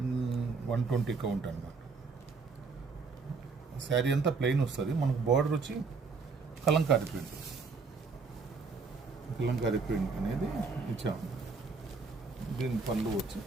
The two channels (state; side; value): quieter; left; 4.6 dB